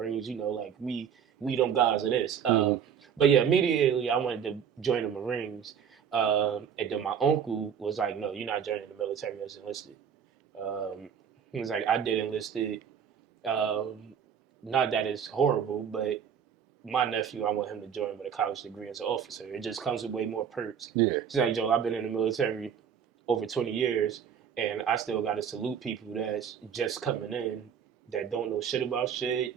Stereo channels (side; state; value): left; quieter; 7.9 dB